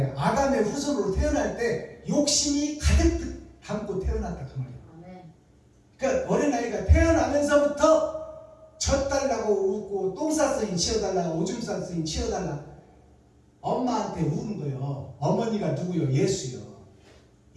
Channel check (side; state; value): both; identical; correlation 1.00